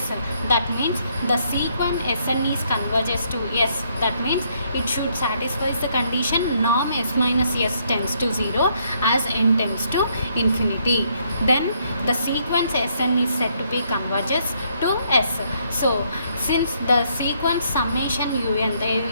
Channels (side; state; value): both; inverted; correlation -0.71